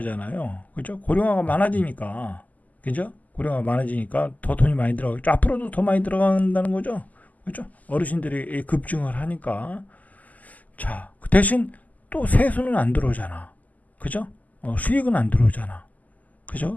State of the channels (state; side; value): late; right; 0.078 ms